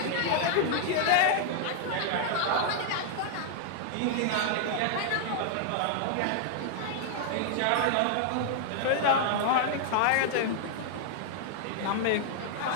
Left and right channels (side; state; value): both; different; correlation -0.01